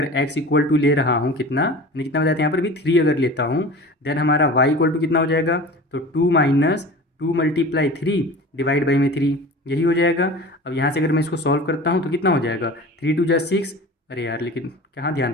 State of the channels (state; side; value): normal; both; correlation 0.37